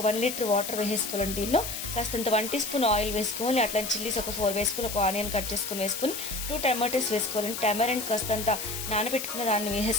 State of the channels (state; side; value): noise; left; hiss, 6 dB below the sound